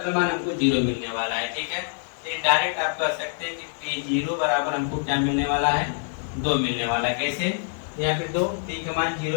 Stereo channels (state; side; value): silent; right; digital silence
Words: मान हमको जीरो मिलने वाला है। ठीक है, तो डायरेक्ट आप कर सकते हैं कि पी जीरो बराबर हमको क्या मिलने वाला है, दो मिलने वाला है। कैसे, यहाँ पे दो, टी का मान